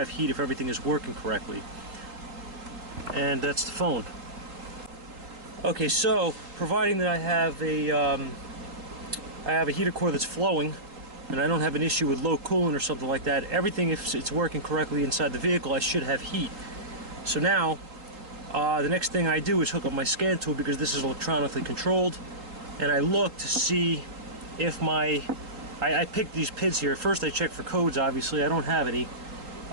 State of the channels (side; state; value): left; late; 3.7 ms